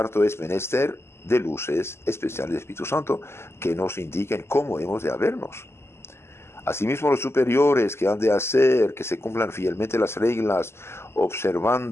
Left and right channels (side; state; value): right; late; 0.12 ms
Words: es menester de luces especiales del Espíritu Santo que nos indiquen cómo hemos de habernos. Asimismo, los superiores que han de hacer que se cumplan fielmente las reglas,